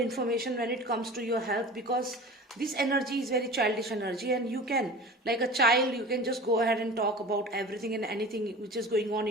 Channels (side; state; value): both; normal; correlation 0.37